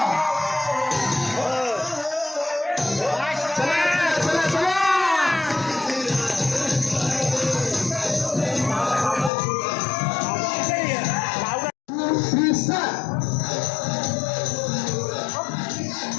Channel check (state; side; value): drops out; right; at 9.3 s